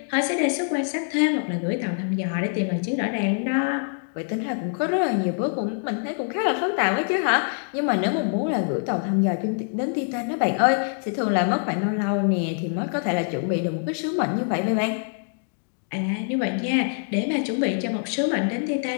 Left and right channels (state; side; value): silent; right; 62 dB below the other